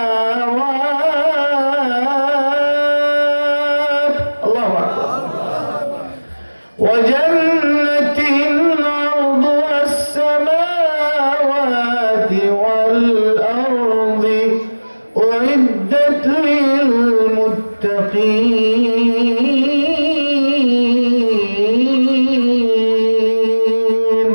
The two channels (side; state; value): both; inverted; correlation -1.00